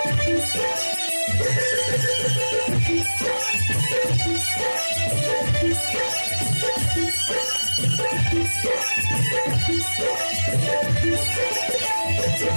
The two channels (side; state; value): both; inverted; correlation -1.00